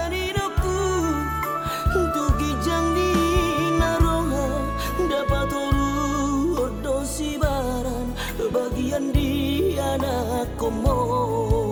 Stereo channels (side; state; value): both; identical; correlation 1.00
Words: tugi canglina roha dapat toru odosi baran bagian di anak